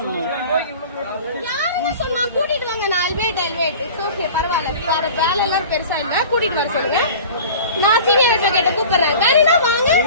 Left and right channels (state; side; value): inverted; both; correlation -0.41